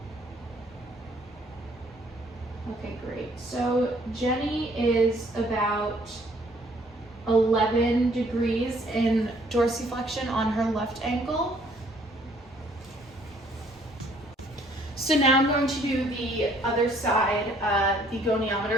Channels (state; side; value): normal; both; correlation 0.62